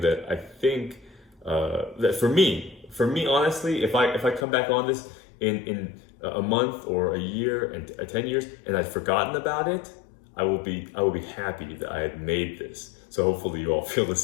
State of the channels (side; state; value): right; drops out; at 4.5 s